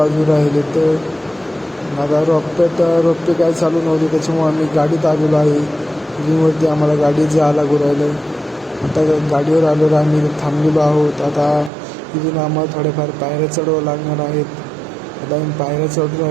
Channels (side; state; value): left; drops out; at 11.7 s